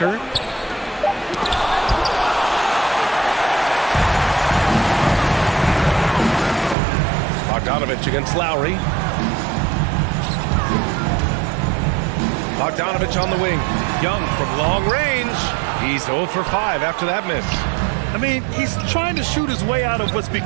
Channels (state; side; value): drops out; left; at 6.8 s